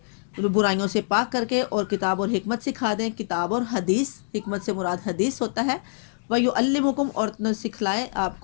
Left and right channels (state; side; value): silent; right; digital silence